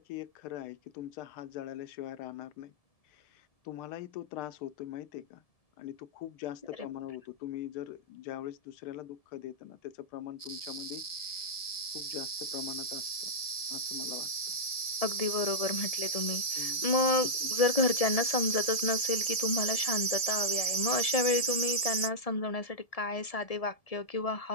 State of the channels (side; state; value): right; late; 1.7 ms